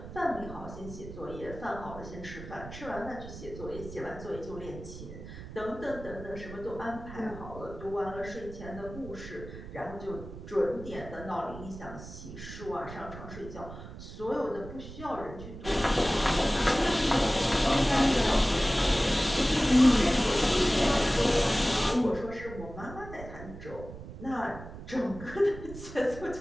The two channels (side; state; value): right; noise; rumble, 13 dB below the sound